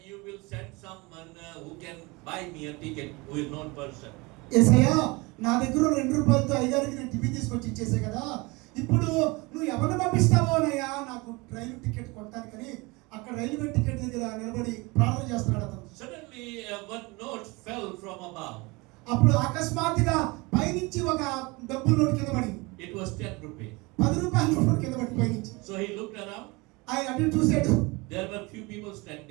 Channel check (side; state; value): left; quieter; 25.2 dB